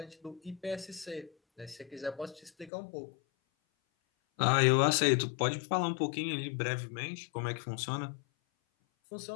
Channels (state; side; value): drops out; right; at 2.7 s